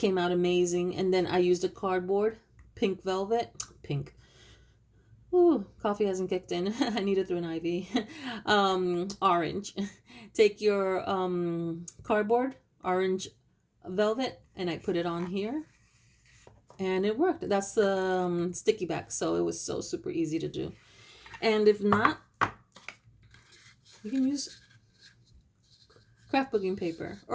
out amazing. And then I used a cardboard, pink velvet. Pink. Ooh, coffee hasn't kicked in. I need it through an IV. Orange. Take your cardboard, orange velvet, and I put it on here. And it worked. That's the sticky back. So it was so super easy to do. And if not, you can use scrapbooking paper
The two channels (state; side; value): identical; both; correlation 1.00